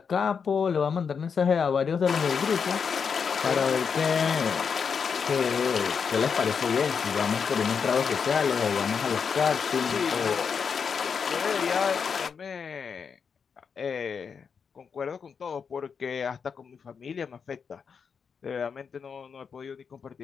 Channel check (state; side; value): quieter; right; 6.2 dB